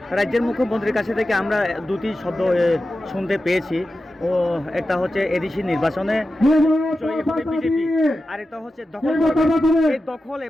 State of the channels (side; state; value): both; normal; correlation 0.92